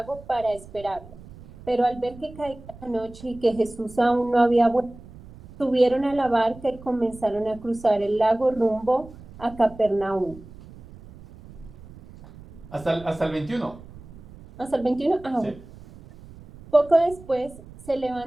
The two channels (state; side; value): noise; right; rumble, 19 dB below the sound